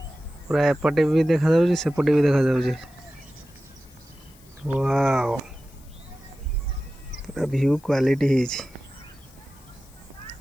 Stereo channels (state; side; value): noise; left; hiss, 27 dB below the sound